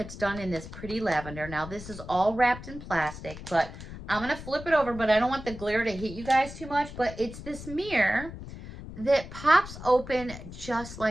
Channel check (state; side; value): noise; left; rumble, 12 dB below the sound